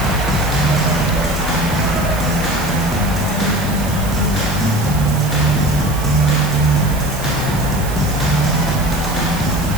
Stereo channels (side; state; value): right; noise; hiss, 12 dB below the sound